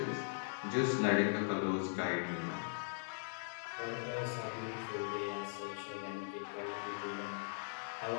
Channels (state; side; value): silent; right; 51 dB below the other